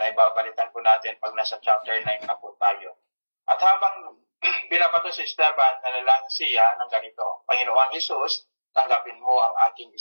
babalitan po natin pag nasa chapter 9 na po tayo. At habang binabato si Esteban, nanalangin siya ng ganito, Panginoong Jesus, tanggapin mo ang aking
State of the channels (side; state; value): both; inverted; correlation -1.00